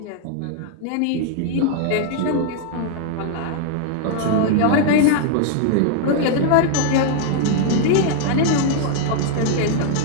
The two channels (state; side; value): different; both; correlation 0.00